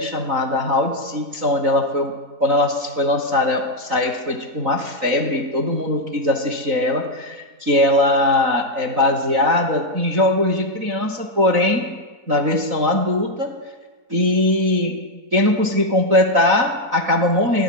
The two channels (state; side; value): late; left; 3.9 ms